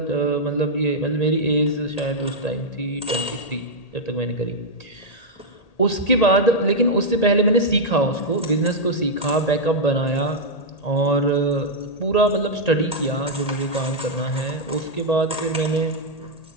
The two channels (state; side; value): late; right; 1.8 ms